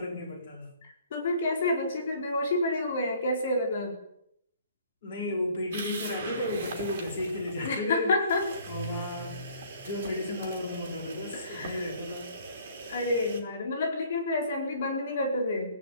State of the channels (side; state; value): both; inverted; correlation -0.57